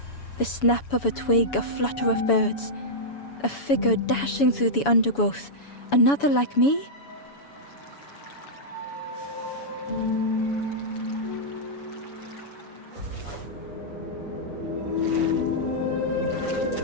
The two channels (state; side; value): late; right; 7.1 ms